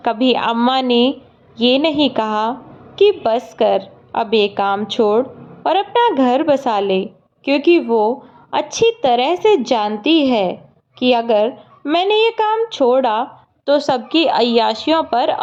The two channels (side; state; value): both; identical; correlation 1.00